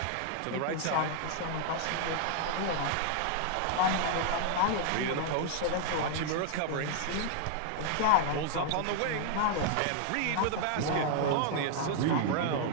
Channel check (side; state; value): both; different; correlation 0.00